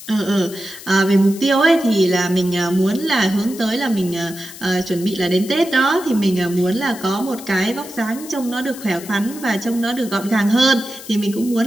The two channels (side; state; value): left; noise; hiss, 15 dB below the sound